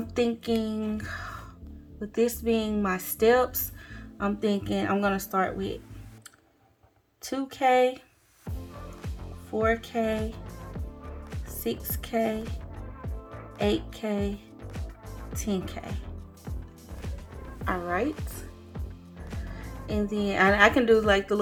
thinking, with this being my steps, I'm thinking I'm going to start with 2K, 4K, 6K, 8K, 10K. Alright. And then I can do like the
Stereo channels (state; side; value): identical; both; correlation 1.00